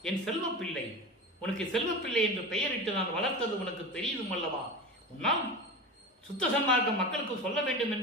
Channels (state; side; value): normal; both; correlation 0.28